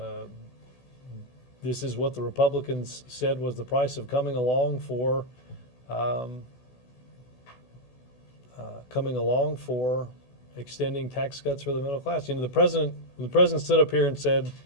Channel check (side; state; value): right; late; 16 ms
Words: this is what the Republicans said was the price of coming along for extending tax cuts for the middle class. You know, the president stood up here and said,